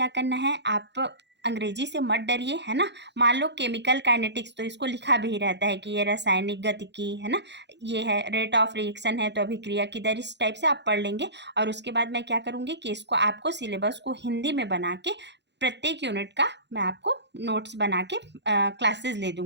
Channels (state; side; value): late; left; 0.51 ms